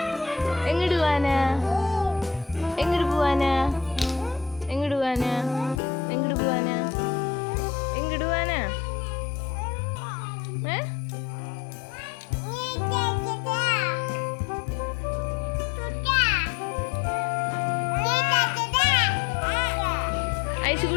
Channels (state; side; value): drops out; right; at 5.8 s